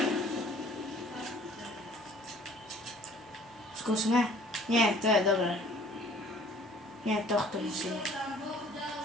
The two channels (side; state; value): both; normal; correlation 0.54